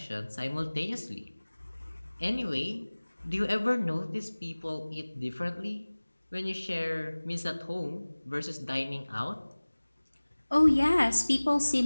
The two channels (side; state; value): both; inverted; correlation -1.00